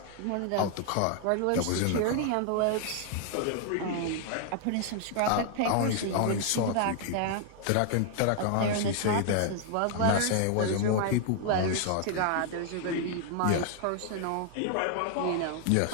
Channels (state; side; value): different; both; correlation 0.00